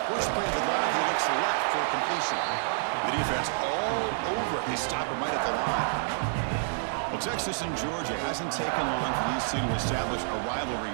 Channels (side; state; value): left; silent; digital silence